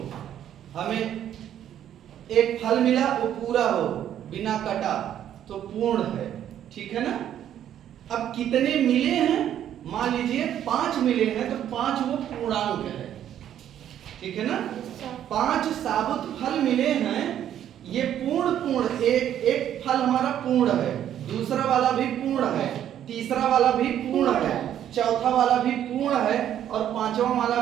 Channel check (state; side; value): quieter; left; 10.6 dB